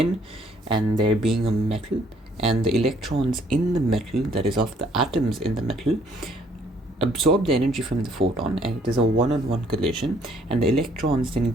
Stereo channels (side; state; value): both; normal; correlation 0.64